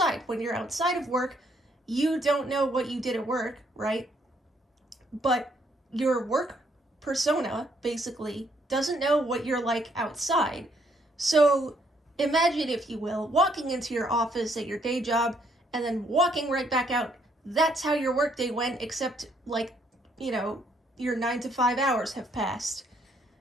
When you're outside of work, you don't know what you did at work, right? But your work persona, basically, doesn't know what you're like outside. So imagine, if you will, walking into your office at your day job and then walking right back out. That's how your workday went, except, like, your 9 to 5 hours have passed.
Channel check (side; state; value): both; normal; correlation 0.70